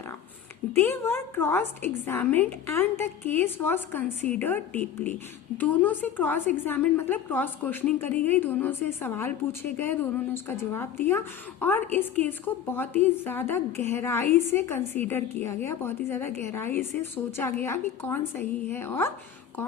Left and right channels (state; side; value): quieter; right; 9.2 dB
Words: They were cross-examined and the case was considered deeply. दोनों से क्रॉस एग्जामिन मतलब क्रॉस क्वेश्चनिंग करी गई, दोनों से सवाल पूछे गए, दोनों ने उसका जवाब दिया और इस केस को बहुत ही ज़्यादा गहराई से कंसीडर किया गया, बहुत ही ज़्यादा गहराई से सोचा गया कि कौन सही है और